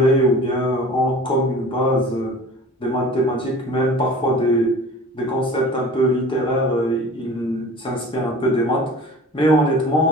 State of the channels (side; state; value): both; normal; correlation 0.42